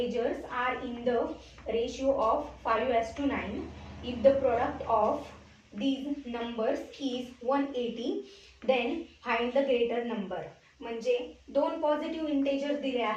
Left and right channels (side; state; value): both; identical; correlation 1.00